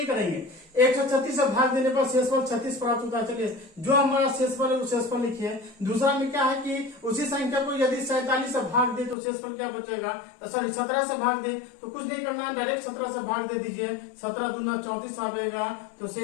करेंगे। 136 से भाग देने पर शेषफल 36 प्राप्त होता है। चलिए, जो हमारा शेषफल है वो शेषफल लिखिए। दूसरा में क्या है कि उसी संख्या को यदि 47 से भाग दे तो शेषफल क्या बचेगा, सॉरी 17 से भाग दे तो कुछ नहीं करना है, डायरेक्ट 17 से भाग दे दीजिए। 17 दूना 34 आएगा, तो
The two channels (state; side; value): drops out; right; at 9.2 s